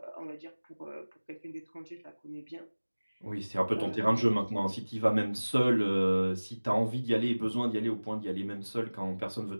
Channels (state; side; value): inverted; both; correlation -1.00